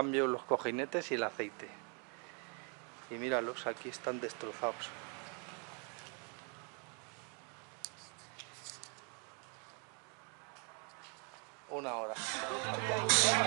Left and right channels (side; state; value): left; quieter; 37.7 dB